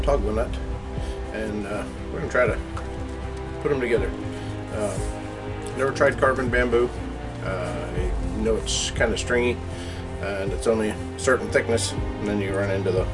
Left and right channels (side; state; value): both; identical; correlation 1.00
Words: nut, and we're going to try to put them together. Never tried carving bamboo. I know it's kind of stringy and it's only a certain thickness, and then you run into the